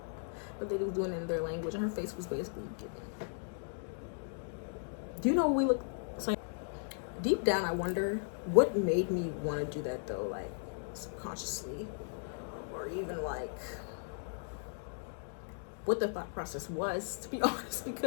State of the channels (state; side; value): silent; right; digital silence